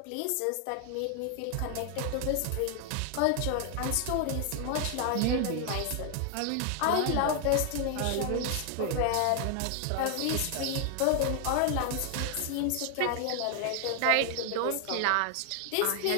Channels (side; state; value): both; different; correlation 0.00